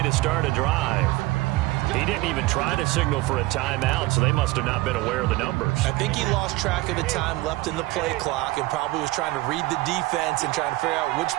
to start a drive. He didn't even try to signal for a timeout, so they must have not been aware of the numbers. I think he lost track of the time left in the play clock and probably was trying to read the defense and trying to figure out which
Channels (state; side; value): quieter; left; 20.0 dB